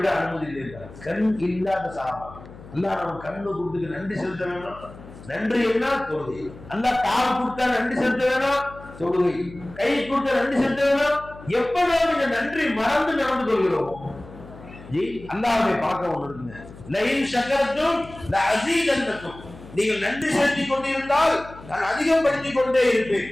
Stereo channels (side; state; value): left; noise; hum, 18 dB below the sound